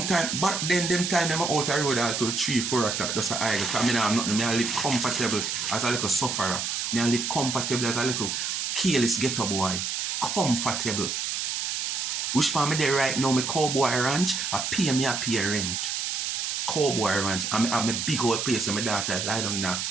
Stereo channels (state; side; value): noise; right; hiss, 2 dB below the sound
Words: back then them time them out the road until 3-4 o'clock just a idle. Because I have nothing. I live comfortable as a little sufferer. I live comfortable as a little careless ghetto boy. Comfortable. Which part me there right now, my cowboy ranch, I pay rent. Cowboy ranch. I have a big old place where my daughter lie down in a